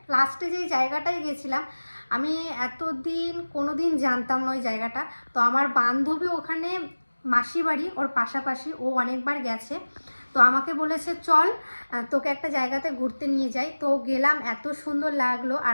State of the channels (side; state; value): both; inverted; correlation -1.00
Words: লাস্টে যেই জায়গাটায় গেছিলাম আমি এতদিন কোনো দিন জানতাম না ওই জায়গাটা। তো আমার বান্ধবী ওখানে মাসি বাড়ি ওর পাশাপাশি, ও অনেকবার গেছে, তো আমাকে বলেছে চল তোকে একটা জায়গাতে ঘুরতে নিয়ে যাই। তো গেলাম, এত সুন্দর লাগলো